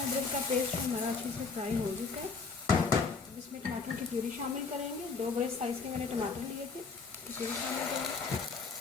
अदरक का पेस्ट हमारा अच्छे से फ्राई हो चुका है। अब इसमें टमाटर की प्यूरी शामिल करेंगे। 2 बड़े साइज़ के मैंने टमाटर लिए थे, इसे भी शामिल करेंगे।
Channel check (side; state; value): right; quieter; 4.8 dB